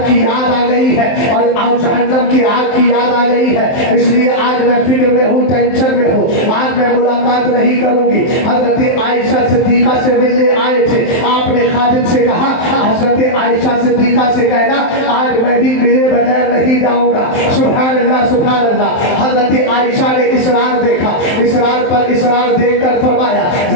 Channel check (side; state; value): right; late; 23 ms